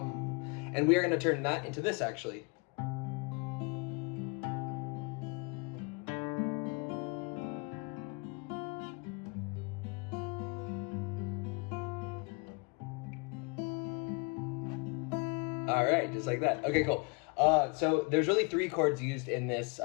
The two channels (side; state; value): right; quieter; 30.9 dB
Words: And we are going to turn that into this, actually. All right, just like that. Okay, cool. So there's really 3 chords used in this